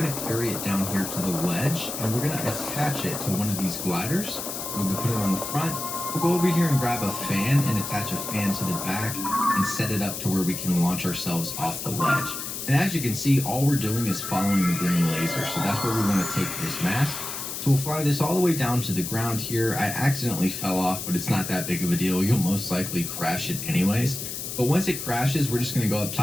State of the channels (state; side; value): noise; left; hiss, 6 dB below the sound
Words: going to carry it down here to the ledge, and we're going to attach it to one of these gliders. We're going to put it on the front. We'll go over here and grab a fan and attach a fan to the back and set it up to where we can launch ourselves off the ledge. And as you can see, all we're doing is following the green laser. So that's where we want to take this mask. So we'll fly this all the way down to the ground here. I accidentally fell off, but it's not that big of a deal. You'll most likely crash it anyways. But once it crashes, we're just going to go up